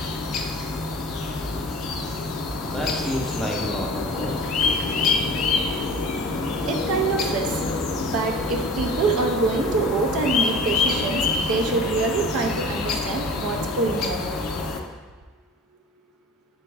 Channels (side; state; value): both; normal; correlation 0.39